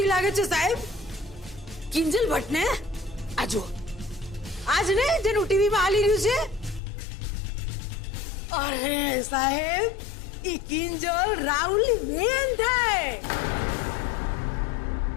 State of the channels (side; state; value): right; drops out; at 6.8 s